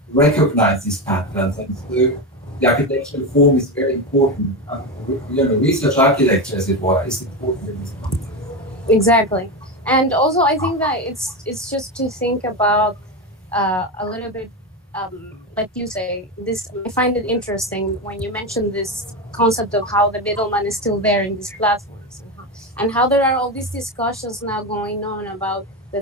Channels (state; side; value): normal; both; correlation 0.16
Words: recognize these patterns. And so the architectural form is very important. Research architecture, as it were, is important in this context. Exactly. And also, I think that it's just to think about a little bit, like you say, this. I find it interesting when you mention this concept of how the middleman is still there in these platforms, and how there are all these discussions now going on about the